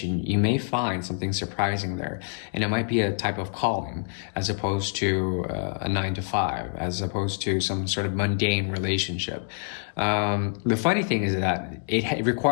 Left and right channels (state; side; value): silent; right; digital silence